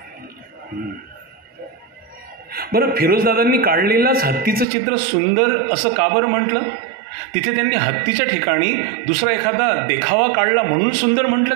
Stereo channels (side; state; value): left; drops out; at 4.7 s